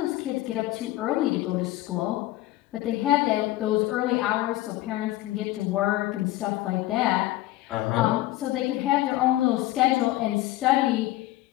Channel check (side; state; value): right; quieter; 16.4 dB